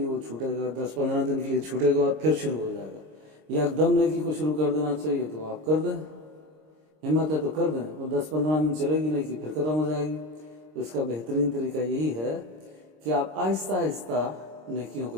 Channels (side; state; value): left; late; 26 ms